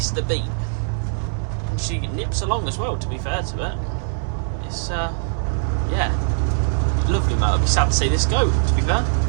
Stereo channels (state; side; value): silent; left; 64 dB below the other